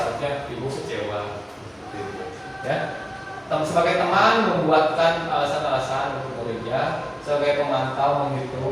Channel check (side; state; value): both; identical; correlation 1.00